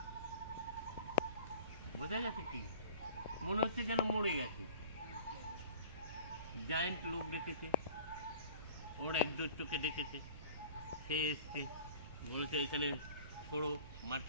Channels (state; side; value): inverted; both; correlation -0.44